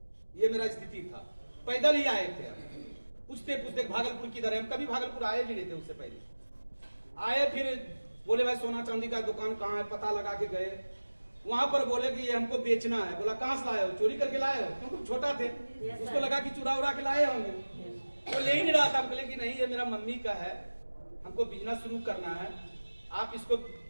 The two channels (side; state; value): both; inverted; correlation -1.00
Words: ये मेरा स्थिति था, पैदल ही आए थे। पूछते पूछते भागलपुर किधर है, हम कभी भागलपुर आए भी नहीं थे उससे पहले। आए, फिर बोले भाई सोना चांदी का दुकान कहाँ है, पता लगा के गए। वहां पर बोले कि ये हमको बेचना है। बोला कहाँ से लाए हो, चोरी करके लाए हो? क्योंकि छोटा थे, उसको लगा कि चुरा उरा के लाए होंगे। वो ले ही नहीं रहा था। हम बोले कि नहीं ये मेरा मम्मी का है, हमको बिजनेस शुरू करना है, आप इसको